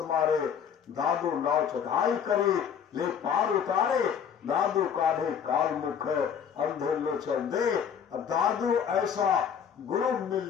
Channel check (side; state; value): right; quieter; 7.7 dB